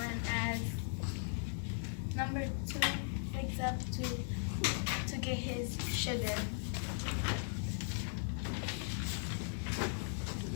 as number two wakes up to get his sugar.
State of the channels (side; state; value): right; silent; digital silence